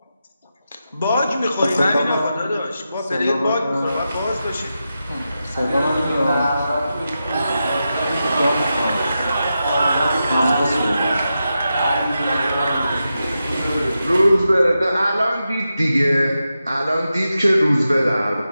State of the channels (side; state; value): both; inverted; correlation -0.89